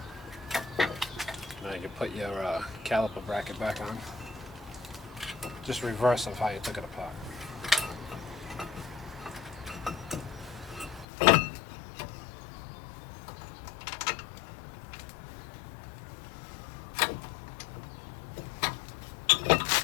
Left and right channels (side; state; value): right; drops out; at 11.1 s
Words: Now you put your caliper bracket back on. Just reverse of how you took it apart.